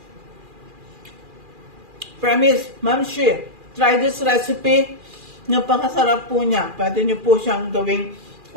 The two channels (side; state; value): left; late; 2.4 ms